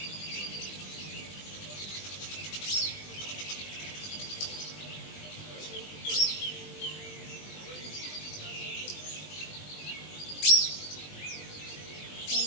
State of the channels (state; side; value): late; right; 20 ms